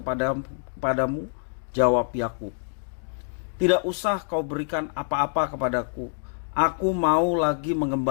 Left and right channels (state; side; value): silent; right; digital silence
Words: Jawab Yakub, "Tidak usah kau berikan apa-apa kepadaku. Aku mau lagi